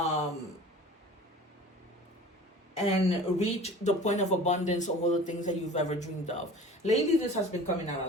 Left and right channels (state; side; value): normal; both; correlation 0.42